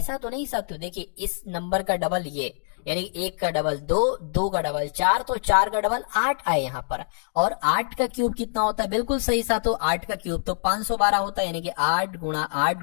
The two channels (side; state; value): right; silent; digital silence